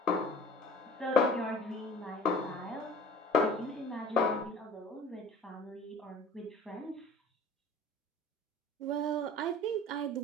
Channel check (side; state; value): both; normal; correlation 0.45